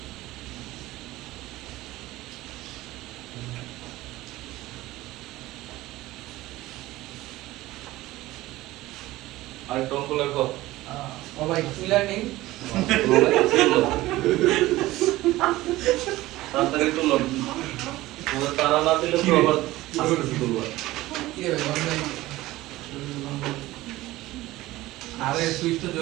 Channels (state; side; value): quieter; left; 17.5 dB